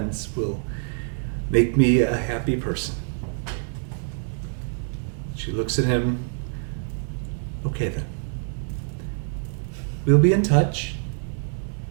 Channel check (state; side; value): silent; left; 61 dB below the other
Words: will make me a happy person. She looks at him. Okay then. We'll be in touch.